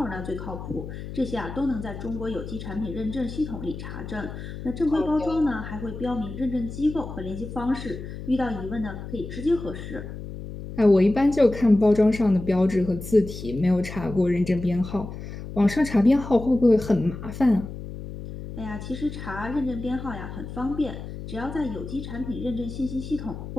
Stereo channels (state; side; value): noise; left; hum, 10 dB below the sound